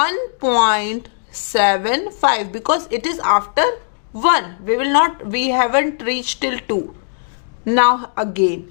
because it is after 1. We haven't reached till 2. Now again.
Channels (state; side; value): silent; right; digital silence